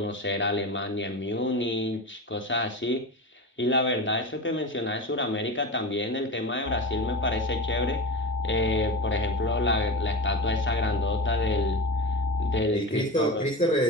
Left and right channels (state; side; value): normal; both; correlation 0.26